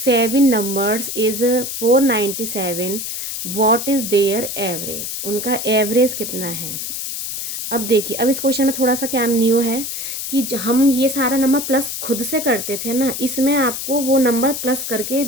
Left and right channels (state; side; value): noise; left; hiss, 5 dB below the sound